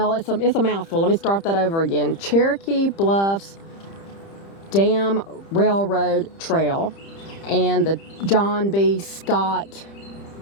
it's a mouthful. Let me start that over again. Cherokee Bluffs Dam Railroad Trail and the John B. Scott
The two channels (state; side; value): late; right; 30 ms